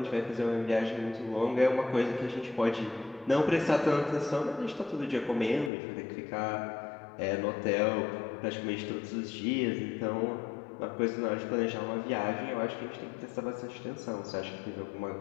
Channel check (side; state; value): right; drops out; at 5.7 s